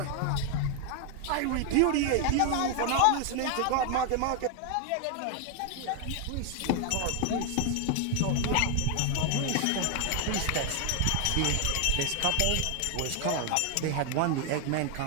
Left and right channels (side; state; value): both; different; correlation 0.00